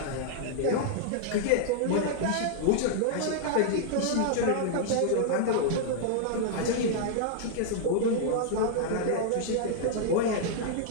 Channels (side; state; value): both; different; correlation -0.01